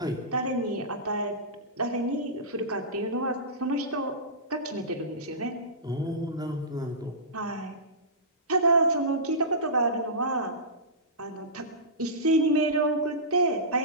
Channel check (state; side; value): normal; both; correlation -0.19